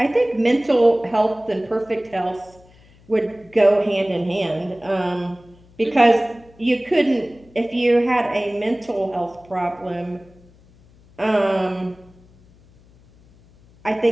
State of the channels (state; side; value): noise; left; hum, 28 dB below the sound